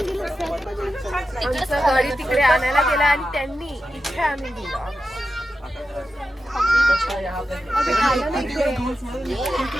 आमचं गाडी तिकडे आणायला गेला आणि त्यांनी इथे आणून दिलं.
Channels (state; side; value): normal; both; correlation 0.91